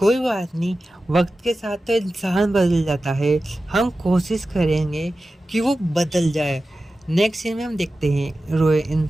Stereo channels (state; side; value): normal; both; correlation 0.94